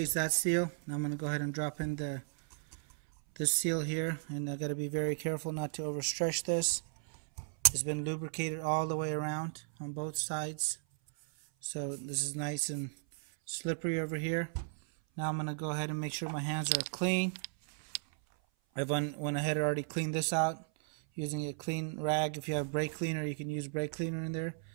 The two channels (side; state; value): left; silent; 54 dB below the other